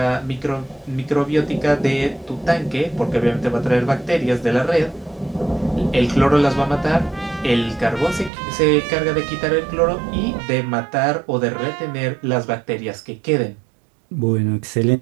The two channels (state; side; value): drops out; left; at 8.3 s